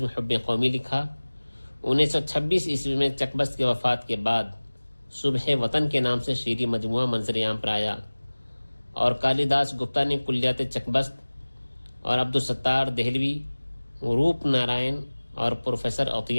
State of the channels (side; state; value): both; inverted; correlation -1.00